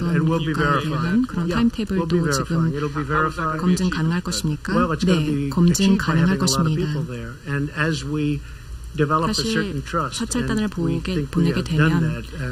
국가에 대한 그런 타임테이블도 지금 검증 가능할 것입니까? 네, 검증 가능할 것입니다. 사실 사찰단을 보내게 되면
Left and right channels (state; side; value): identical; both; correlation 1.00